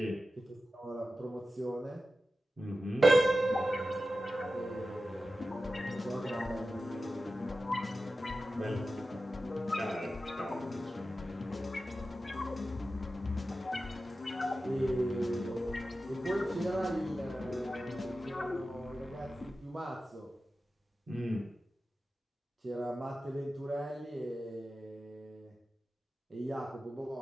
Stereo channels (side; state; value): both; normal; correlation 0.93